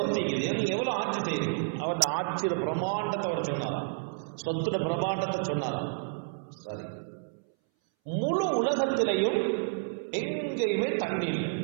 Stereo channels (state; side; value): silent; left; 58 dB below the other